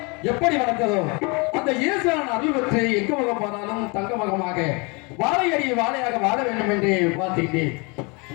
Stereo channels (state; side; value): quieter; right; 29.9 dB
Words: எப்படி வளர்ந்ததோ அந்த ஈஸ்வரன் அருள் பெற்று எங்க முகம் போனாலும் தங்க முகமாக வாழையடி வாழையாக வாழ வேண்டும் என்று பார்த்துக்கிட்டேன்.